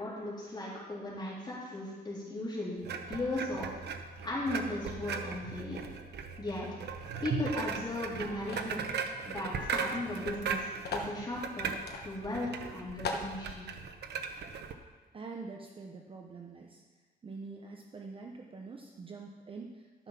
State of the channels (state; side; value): normal; both; correlation 0.46